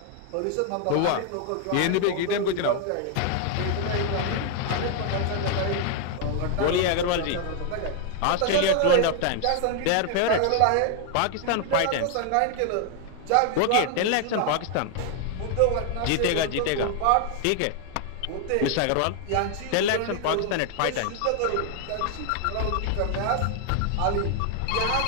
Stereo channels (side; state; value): both; different; correlation 0.00